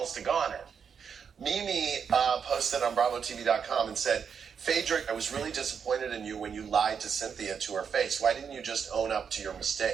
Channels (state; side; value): quieter; left; 6.8 dB